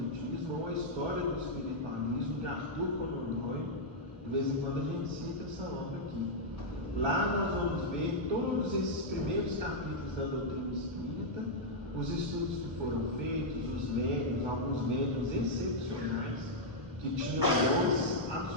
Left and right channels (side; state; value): left; late; 1.1 ms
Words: ou A História do Espiritualismo, de Arthur Conan Doyle. De vez em quando a gente cita essa obra aqui. Lá nós vamos ver todos esses primeiros capítulos da doutrina espírita, os estudos que foram feitos, os médiuns, alguns médiuns excepcionais, que tinham dons